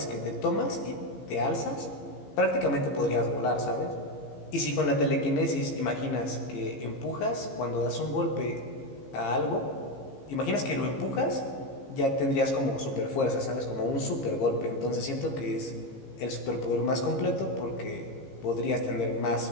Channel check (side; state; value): right; late; 15 ms